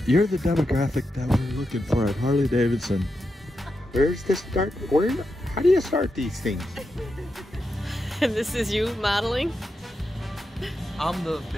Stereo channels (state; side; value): normal; both; correlation 0.87